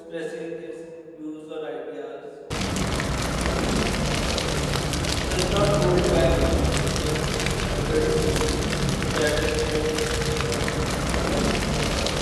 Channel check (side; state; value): both; identical; correlation 1.00